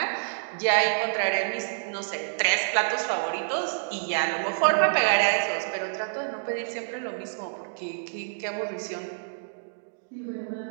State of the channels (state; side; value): silent; left; digital silence